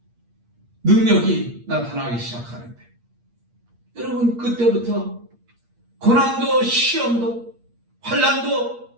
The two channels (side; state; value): left; late; 8.5 ms